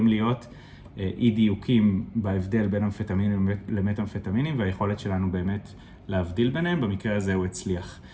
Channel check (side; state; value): both; identical; correlation 1.00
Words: להיות אי דיוקים בהבדל בין אמפטמינים למטאמפטמינים, והיכולת שלנו באמת להבדיל ביניהם, במקרה הזה הוא הצליח.